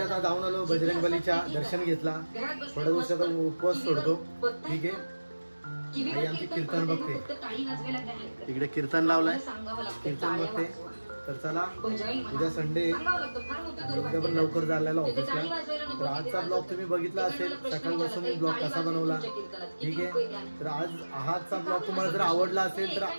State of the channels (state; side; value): inverted; both; correlation -1.00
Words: जाऊन आलो. बजरंगबलीच्या दर्शन घेतला. थोड्या दिवसाचा उपवास सोडतो. ठीक आहे आणि आमची कीर्तन बघते. तिकडे कीर्तन लावलाय. कीर्तन बघते. तर चला उद्या संडे उद्या पण लवकर झालेला ऑफिसला. तर आजचा ब्लॉग तुम्ही बघितला असेल. सकाळपासून मी ब्लॉग कसा बनवला. ठीक आहे तर आजचा ब्लॉग तुम्हाला जर आवडला असेल तर